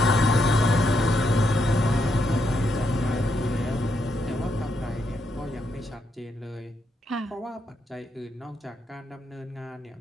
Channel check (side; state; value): both; normal; correlation 0.79